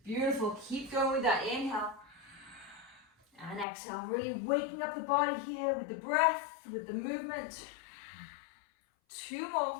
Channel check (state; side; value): drops out; right; at 3.7 s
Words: Beautiful. Keep going with that. Inhale. And exhale. Really waking up the body here with the breath, with the movement. 2